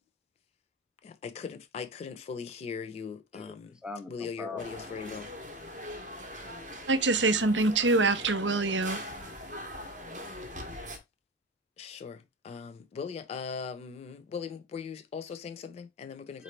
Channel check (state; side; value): normal; both; correlation 0.25